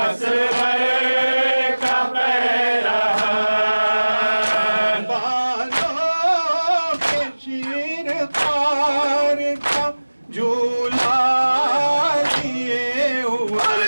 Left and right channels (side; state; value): both; inverted; correlation -1.00